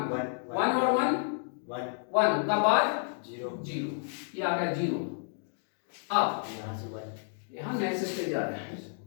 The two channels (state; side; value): silent; right; digital silence